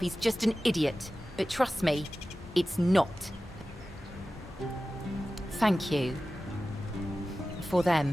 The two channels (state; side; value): normal; both; correlation 0.95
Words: just an idiot. But trust me, it's not. Thank you. For